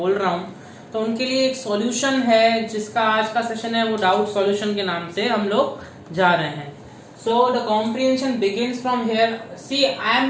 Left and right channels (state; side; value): identical; both; correlation 1.00